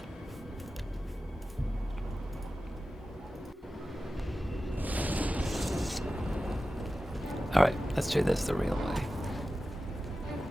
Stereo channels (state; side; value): normal; both; correlation 0.94